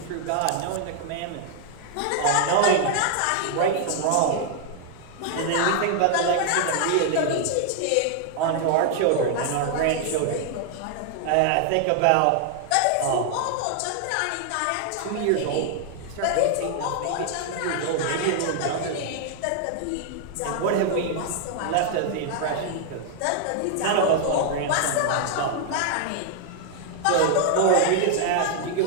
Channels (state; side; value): different; both; correlation 0.00